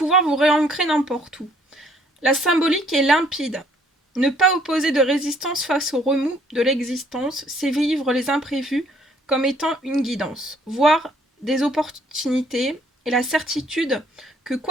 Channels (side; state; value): both; normal; correlation 0.63